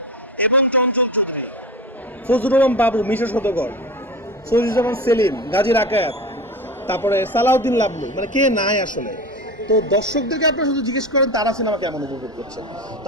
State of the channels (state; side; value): normal; both; correlation 0.29